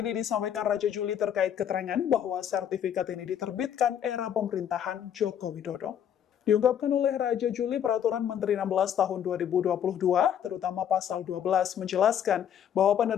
disampaikan Raja Juli terkait keterangan bahwa sertifikat ini diterbitkan era pemerintahan Joko Widodo. Diungkapkan oleh Raja Juli, Peraturan Menteri 16 Tahun 2022, terutama Pasal 12, menjelaskan bahwa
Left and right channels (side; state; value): right; quieter; 9.3 dB